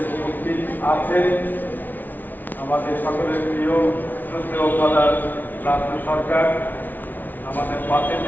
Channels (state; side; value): late; right; 0.085 ms